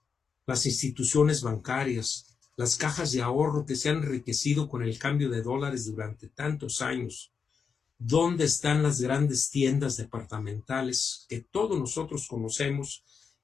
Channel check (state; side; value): quieter; right; 6.0 dB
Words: las instituciones bancarias, las cajas de ahorro que se han enriquecido con el cambio de dólares durante tantos años. ¿Dónde están las grandes tiendas departamentales que todos nosotros conocemos